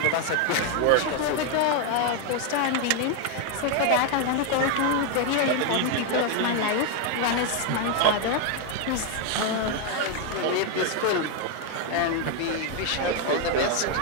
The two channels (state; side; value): different; both; correlation 0.01